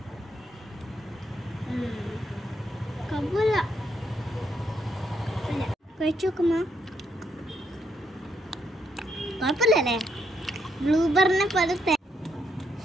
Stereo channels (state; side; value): normal; both; correlation 0.77